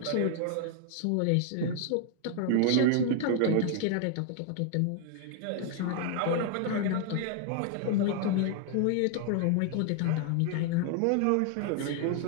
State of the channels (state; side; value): different; both; correlation 0.00